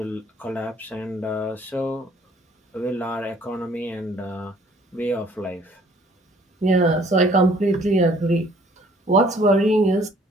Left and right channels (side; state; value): both; normal; correlation 0.59